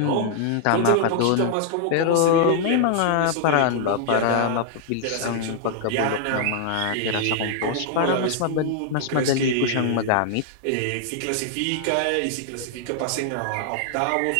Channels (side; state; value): both; different; correlation -0.01